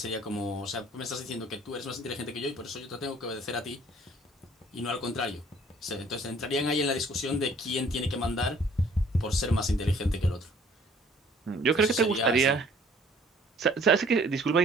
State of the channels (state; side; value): normal; both; correlation 0.57